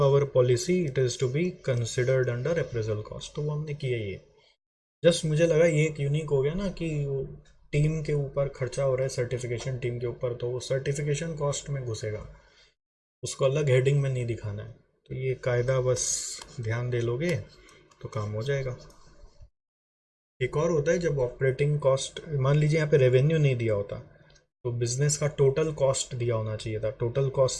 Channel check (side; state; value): both; identical; correlation 1.00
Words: our policy it is to be considered under appraisal cost। तो वो हमने किया ये, जस्ट मुझे लगा ये एक यूनिक हो गया ना कि वो टीम के ऊपर खर्चा हो रहा है, सर्टिफिकेशन टीम के ऊपर, तो वो सर्टिफिकेशन कॉस्ट में घुसेगा, उसको अलग हेडिंग में नहीं दिखाना है। तो ये कायदा बस ध्यान दे लोगे तो काम हो जाएगा। एक और होता है जब ऑपरेटिंग कॉस्ट, मान लीजिए यहाँ पे रेवेन्यू नहीं दिया होता तो बिजनेस का टोटल कॉस्ट दिया होना चाहिए था, टोटल कॉस्ट